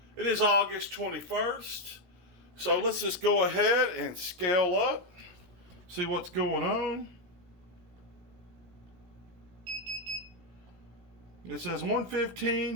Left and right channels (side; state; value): left; late; 17 ms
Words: It is August 21st. So let's just go ahead and scale up, see what's going on. It says